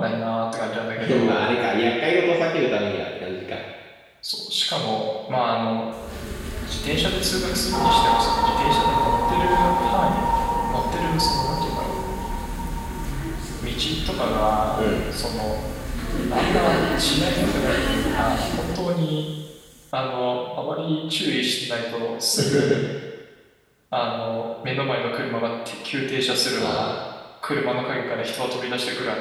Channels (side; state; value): both; identical; correlation 1.00